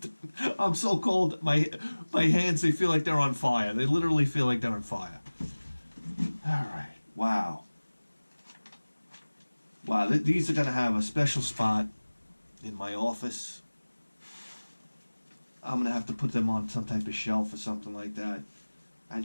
I'm so cold. My hands, they feel like they're on fire. They literally feel like they're on fire. All right. Wow. Wow. These are going to have a special spot in my office. I'm going to have to put them on some type of shelf or something like that. And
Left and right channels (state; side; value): inverted; both; correlation -1.00